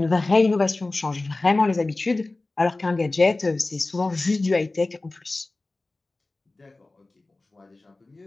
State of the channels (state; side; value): quieter; right; 3.1 dB